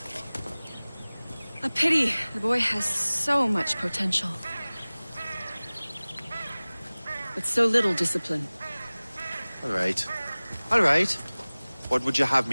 A pity. The boy has so much potential. But so little discipline. All right. All right. What would you have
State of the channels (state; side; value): inverted; both; correlation -0.99